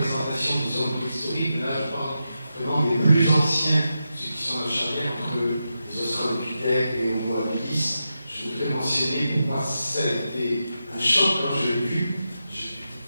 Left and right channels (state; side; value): inverted; both; correlation -0.88